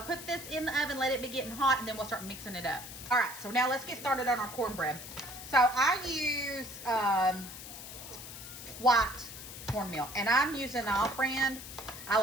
this in the oven, let it be getting hot, and then we'll start mixing it up. All right, so now let's get started on our cornbread. So I use white cornmeal, and I'm using the off-brand. I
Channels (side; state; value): left; noise; hiss, 12 dB below the sound